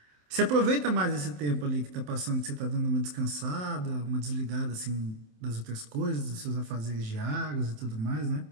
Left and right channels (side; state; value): left; late; 27 ms